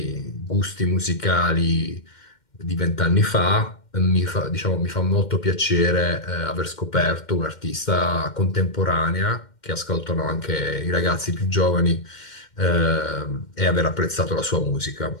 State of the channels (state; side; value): late; right; 2.1 ms